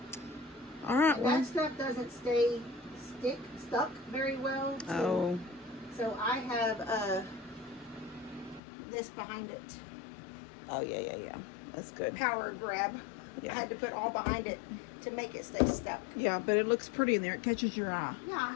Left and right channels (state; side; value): drops out; right; at 8.6 s